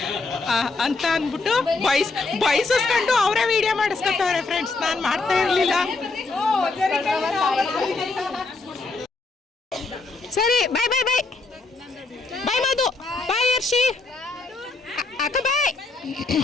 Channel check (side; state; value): right; quieter; 3.7 dB